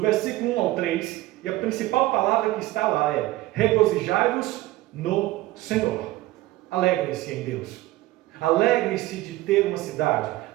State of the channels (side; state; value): left; quieter; 17.6 dB